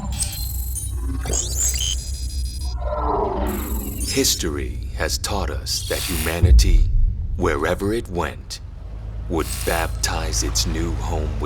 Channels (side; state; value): both; identical; correlation 1.00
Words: History has taught us that humanity, wherever it went, would baptize its new home